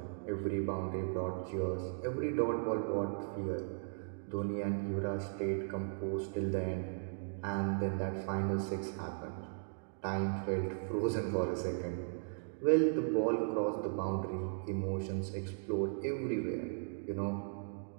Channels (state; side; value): silent; left; digital silence